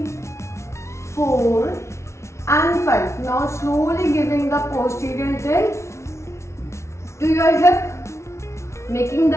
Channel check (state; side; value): late; right; 0.13 ms